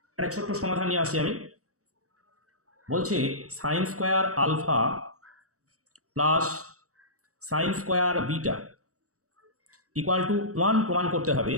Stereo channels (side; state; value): left; late; 0.65 ms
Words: একটা ছোট্ট সমাধান নিয়ে আসি আমি। বলছে sine square alpha plus sine square beta equal to 1 প্রমাণ করতে হবে।